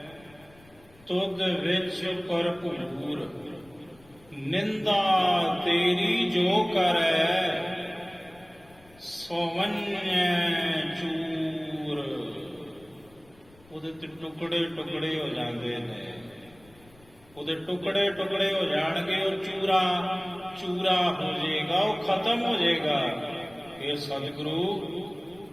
ਤੁਧ ਵਿੱਚ ਭਰਪੂਰ। ਨਿੰਦਾ ਤੇਰੀ ਜੋ ਕਰੈ, ਸੋਵੰਨੈ ਚੂਰ। ਉਹਦੇ ਤੇ ਟੁਕੜੇ ਟੁਕੜੇ ਹੋ ਜਾਂਦੇ ਨੇ, ਉਹਦੇ ਟੁਕੜੇ ਟੁਕੜੇ ਹੋ ਜਾਣਗੇ, ਉਹ ਚੂਰਾ ਚੂਰਾ ਹੋ ਜਾਏਗਾ, ਉਹ ਖਤਮ ਹੋ ਜਾਏਗਾ। ਇਹ ਸਤਿਗੁਰੂ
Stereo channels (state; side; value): noise; left; rumble, 27 dB below the sound